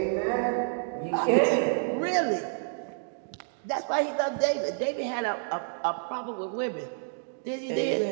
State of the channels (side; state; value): left; silent; digital silence